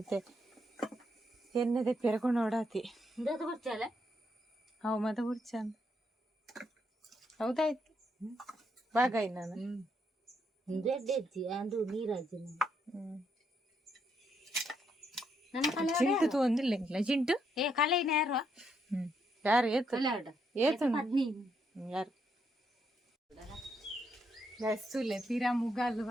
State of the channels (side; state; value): both; normal; correlation 0.76